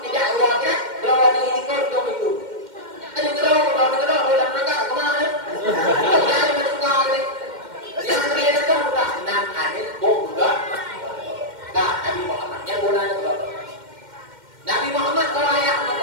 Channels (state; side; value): late; left; 2.1 ms